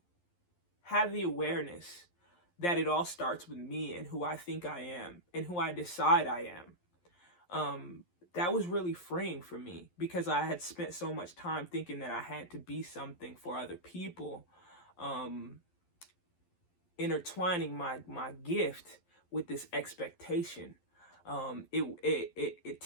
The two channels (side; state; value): right; late; 11 ms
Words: have the awareness that it all starts with me and who I think I am and who I decide I am, that was really freeing for me, because I had spent so much time thinking that I had to be something for other people, intertwining my gift with this expectation. It